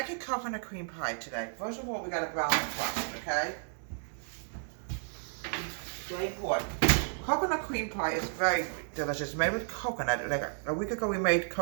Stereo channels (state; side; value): silent; left; digital silence